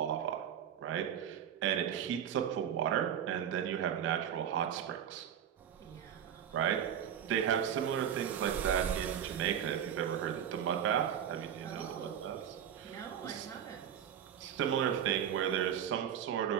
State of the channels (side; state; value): left; quieter; 9.2 dB